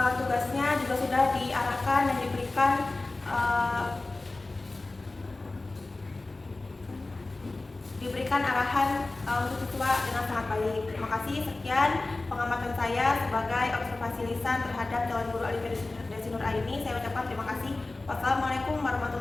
juga sudah diarahkan dan diberikan arahan untuk siswa dengan sangat baik. Terima kasih. Sekian pengamatan saya sebagai observasi lisan terhadap calon guru Alifia Desi Nur Aini. Saya ucapkan terima kasih. Wassalamualaikum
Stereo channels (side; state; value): right; quieter; 3.1 dB